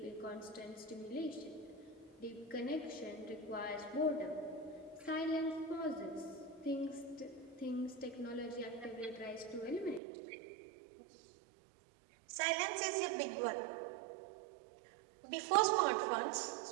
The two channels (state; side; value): drops out; left; at 10.0 s